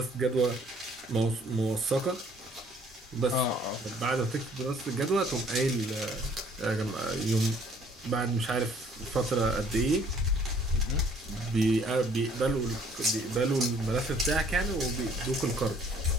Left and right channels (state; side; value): normal; both; correlation 0.59